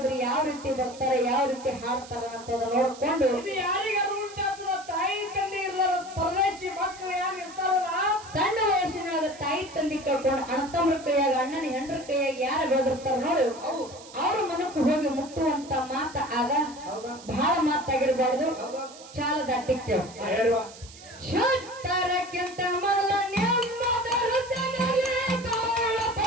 ಯಾವ ರೀತಿ ಬರ್ತಾರೆ ಯಾವ ರೀತಿ ಹಾಡ್ತಾರ ಅಂತ ನೋಡ್ಕೊಂಡು ಇದು ಯಾರಿಗಾರು ಉಂಟಾಗ್ತದ ತಾಯಿ ತಂದೆ ಇರ್ಲಾರ ಪರದೇಶಿ ಮಕ್ಕಳು ಯಾರು ಇರ್ತಾರಲ್ಲ ಸಣ್ಣ ವಯಸ್ಸಿನೊಳಗ ತಾಯಿ ತಂದೆ ಕಳ್ಕೊಂಡು ಅಣ್ಣತಮ್ಮರ ಕೈಯಾಗ ಅಣ್ಣನ ಹೆಂಡ್ರ ಕೈಯಾಗ ಯಾರು ಬೆಳೆದಿರ್ತಾರ ನೋಡಿ ಅವ್ರ ಮನಕ್ಕೆ ಹೋಗಿ ಮುಟ್ಟುವಂತ ಮಾತ ಆಗ ಬಹಳ ಮಾತಾಗಿರ್ಬಾರ್ದು. ಚಾಲದ ಅಟ್ಟಿಕ್ಕೆ ಶುದ್ಧರಕ್ಕಿಂತ ಮೊದಲ ನೆಮ್ಮದ ಹೃದಯದಲ್ಲಿ ತೋಳ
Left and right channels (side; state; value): right; noise; hiss, 18 dB below the sound